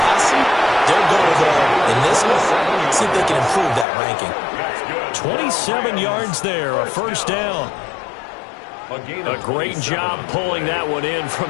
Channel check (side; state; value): right; drops out; at 3.9 s